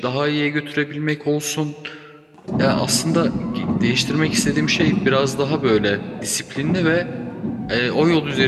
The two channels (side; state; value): both; identical; correlation 1.00